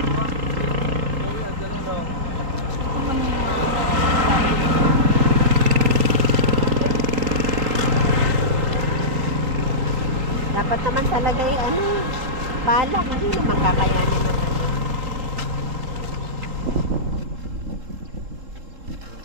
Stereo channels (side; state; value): left; late; 3.7 ms